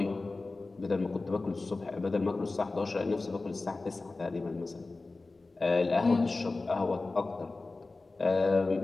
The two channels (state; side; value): quieter; right; 3.4 dB